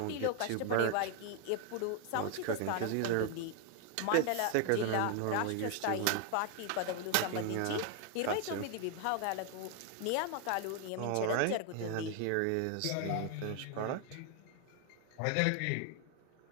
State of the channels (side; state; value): both; different; correlation 0.01